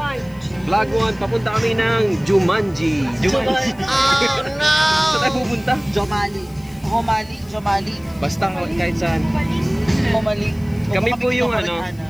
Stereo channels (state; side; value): noise; left; hiss, 28 dB below the sound